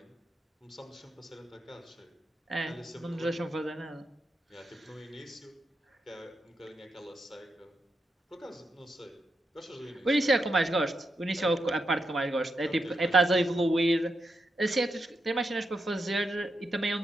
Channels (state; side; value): normal; both; correlation 0.85